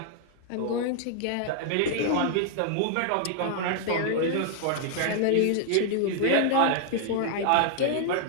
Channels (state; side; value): different; both; correlation 0.00